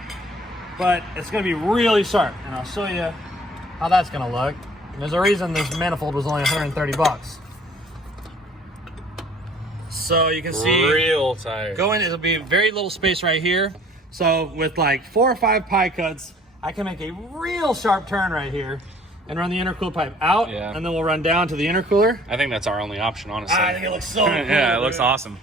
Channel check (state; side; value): normal; both; correlation 0.54